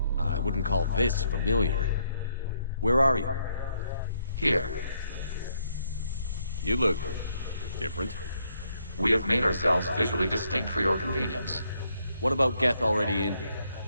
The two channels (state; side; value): inverted; both; correlation -0.74